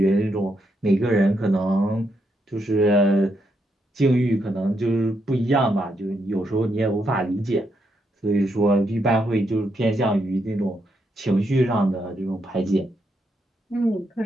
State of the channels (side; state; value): both; normal; correlation 0.79